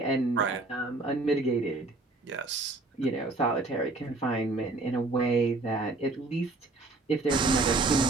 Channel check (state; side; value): quieter; left; 3.3 dB